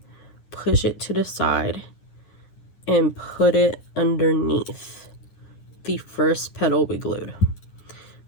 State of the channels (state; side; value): late; right; 9.7 ms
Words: push it to the side and put it underneath the first petal we glued.